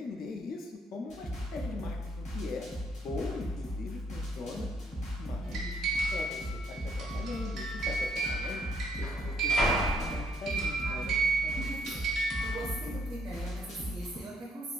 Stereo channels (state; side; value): normal; both; correlation 0.70